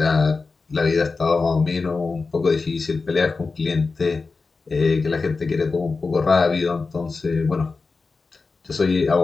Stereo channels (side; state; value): right; quieter; 4.2 dB